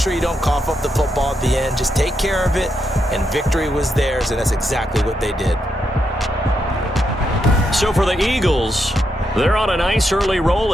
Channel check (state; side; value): normal; both; correlation 0.82